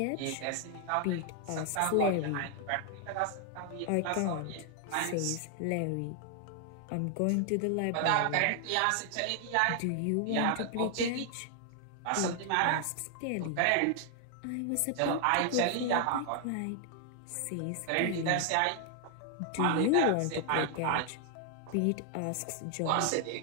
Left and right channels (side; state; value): both; different; correlation 0.00